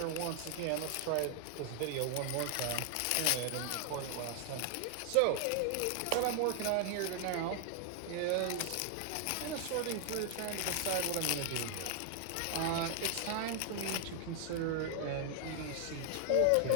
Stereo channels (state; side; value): different; both; correlation 0.00